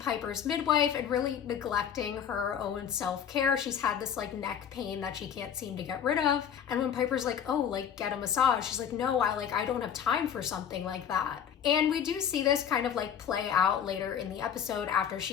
midwife and really neglecting her own self-care. She's had this neck pain that she can't seem to get rid of. And when Piper's like, oh, get a massage, she's like, no, I don't have time for something like that. And we do see this kind of play out later in the episode after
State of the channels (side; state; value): right; quieter; 8.5 dB